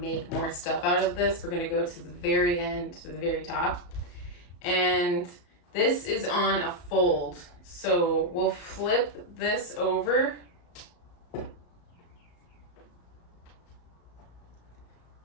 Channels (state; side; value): late; right; 34 ms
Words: more stuff out of this, we're gonna go to the very end, to the very top. And this is on a fold. So we'll flip this over.